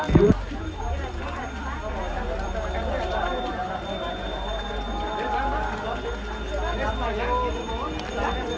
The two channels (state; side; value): identical; both; correlation 1.00